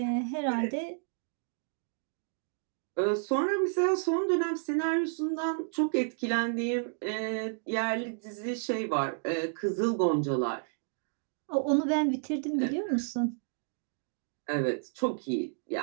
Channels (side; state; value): left; silent; digital silence